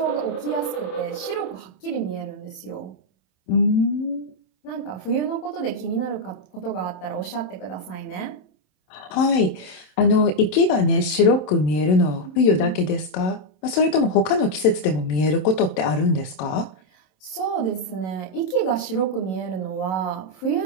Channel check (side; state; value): right; late; 27 ms